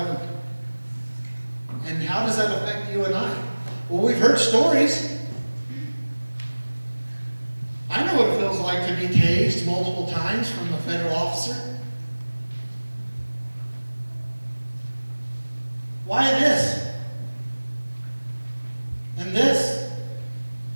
And how does that affect you and I? Well, we've heard stories. I know what it feels like to be tased multiple times from a federal officer. Why this? And this?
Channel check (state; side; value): inverted; both; correlation -1.00